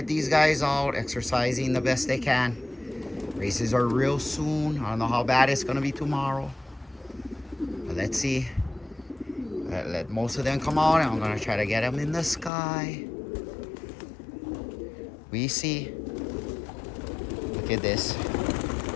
these guys out exercising the best they can. Races are real soon. I don't know how bad it's gonna be tomorrow, but let's see. Let most of them come out, and I'm gonna try to get them in the sky. We see. Look at this.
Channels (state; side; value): drops out; right; at 12.5 s